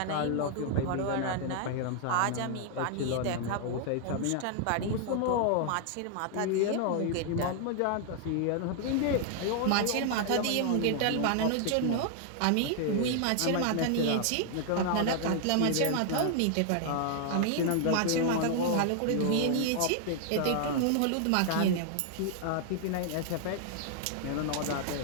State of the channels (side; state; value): both; different; correlation 0.00